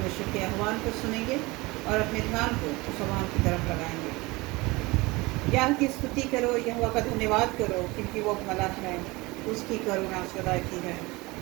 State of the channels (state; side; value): quieter; left; 22.9 dB